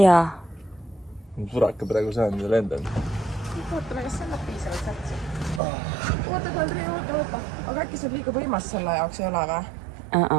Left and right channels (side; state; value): left; drops out; at 5.6 s